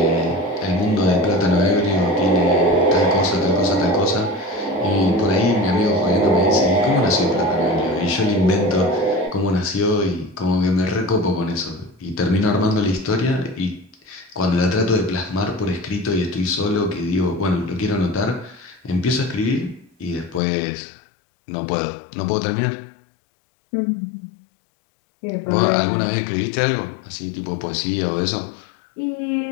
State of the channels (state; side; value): drops out; right; at 20.4 s